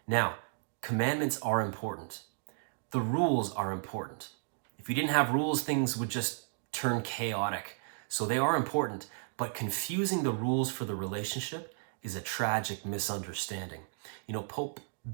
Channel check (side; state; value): left; silent; digital silence